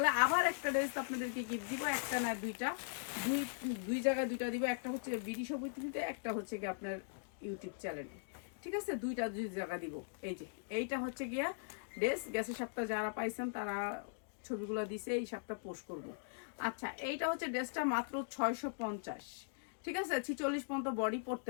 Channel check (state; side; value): silent; right; digital silence